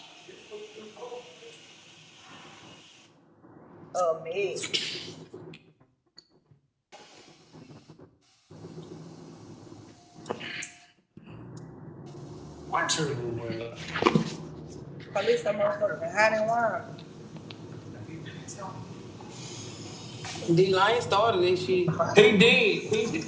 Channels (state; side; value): identical; both; correlation 1.00